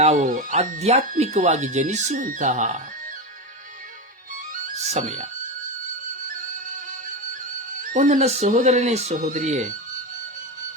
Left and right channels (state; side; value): normal; both; correlation 0.17